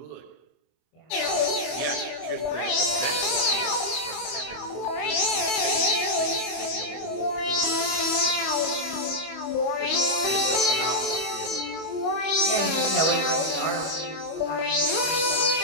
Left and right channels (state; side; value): late; right; 25 ms